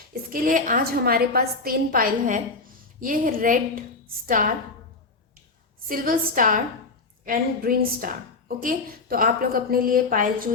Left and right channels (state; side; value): quieter; right; 3.8 dB